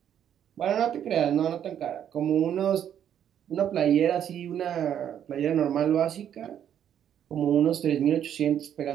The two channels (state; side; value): quieter; left; 9.7 dB